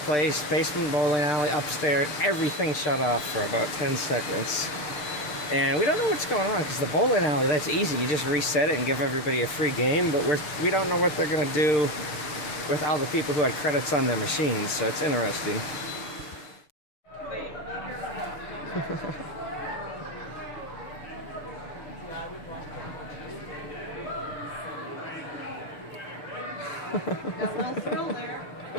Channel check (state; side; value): late; right; 6.7 ms